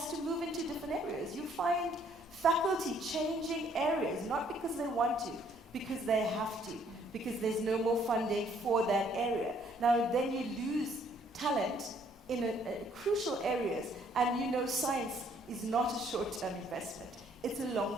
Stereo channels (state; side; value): normal; both; correlation 0.64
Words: to move into different areas? You find faculty changing areas, not because they want to, because they have to, because there's no more funding for that area. Now then you lose talent in crucial areas, and you know science is not a short-term investment, it's a